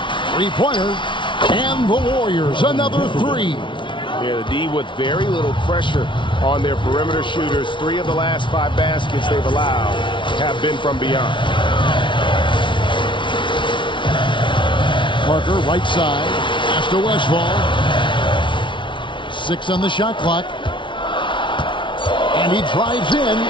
Three-pointer, and the Warriors, another 3. Yeah, the D with very little pressure on their perimeter shooters. 3 of the last 5 baskets they've allowed have been from beyond. Parker, right side, pass to Westphal. 6 on the shot clock. And he drives in.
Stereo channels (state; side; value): late; right; 0.24 ms